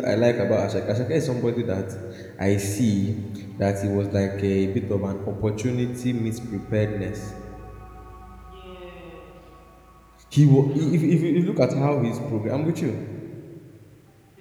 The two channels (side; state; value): both; identical; correlation 1.00